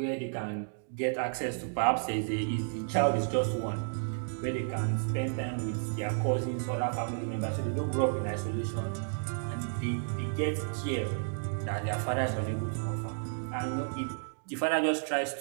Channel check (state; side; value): silent; left; digital silence